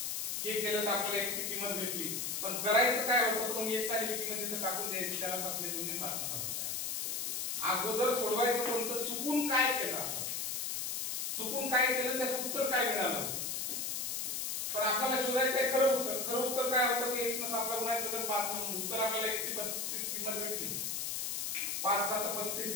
तर आपल्याला x ची किंमत भेटली, पण करायचं काय होतं, पण x आलेली किंमत तिथे टाकून द्यायची, त्याला 7 ने गुणून 5 न भागायचं. अगोदर सोडवायचं कोणतं, चुकून काय केलं, चुकून काय केलं त्याचं उत्तर काय मिळालं, पण आपल्याला शोधायचं आहे खरं उत्तर. खरं उत्तर काय होतं की x ने 7 ला गुणायचं तर 5 ने, उत्तर आपल्याला x ची 35 किंमत भेटली. 5 7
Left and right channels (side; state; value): left; noise; hiss, 1 dB below the sound